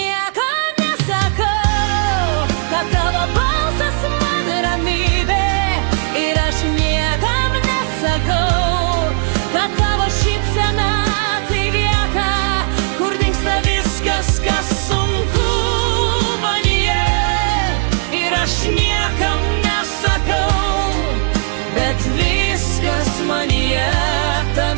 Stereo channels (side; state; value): left; silent; digital silence